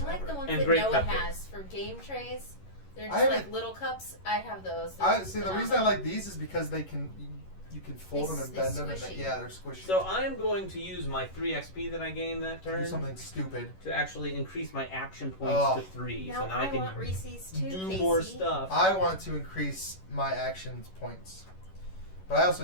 I like ever. the ones And that great Noah cupcakes. has for game trays. They're I just like haven't- little cups. I have those. They're I see. The reason I phenomenal. like these is because they can, you can fold them and They're bend them, and squishy. yeah, they're squishy. So I am going to use my 3 XP that I gained that do turn something stupid. to actually increase my action points Oh. to 3. Now so now I I can want Reese's too, do Casey. more stuff. I want to increase my action points, but I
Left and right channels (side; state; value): right; late; 11 ms